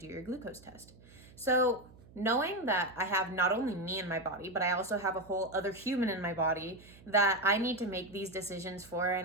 your glucose test. So knowing that I have not only me in my body, but I also have a whole other human in my body that I need to make these decisions for,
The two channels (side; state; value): right; noise; hum, 23 dB below the sound